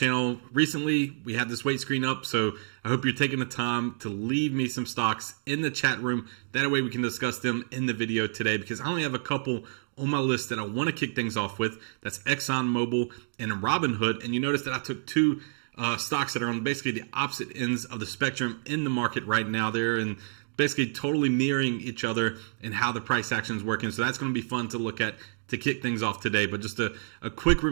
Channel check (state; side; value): silent; left; digital silence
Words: recently. We had this weight screen up, so I hope you're taking the time to leave me some stocks in the chat room. That way we can discuss them in the video today, because I only have a couple on my list that I want to kick things off with. That's XOM and Robinhood. And you notice that I took two stocks that are on basically the opposite ends of the spectrum in the market right now. They're in basically totally mirroring each other and how the price action is working. So that's going to be fun to look at to kick things off today. But just a quick